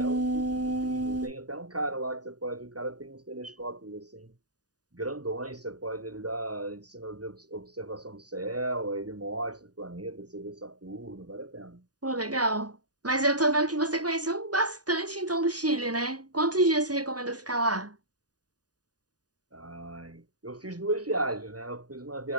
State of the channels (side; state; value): left; late; 0.68 ms